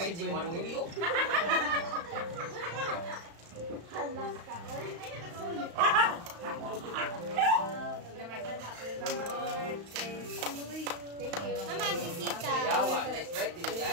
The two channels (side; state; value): left; late; 35 ms